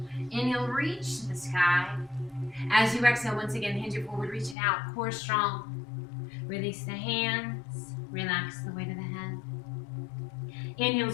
Inhale, reach to the sky. As you exhale, once again, hinge it forward, reach it out, core strong. Release the hands, relax the weight of the head. Inhale,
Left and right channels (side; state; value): right; drops out; at 4.5 s